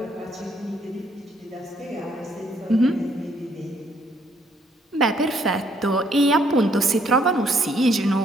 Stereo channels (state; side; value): normal; both; correlation 0.68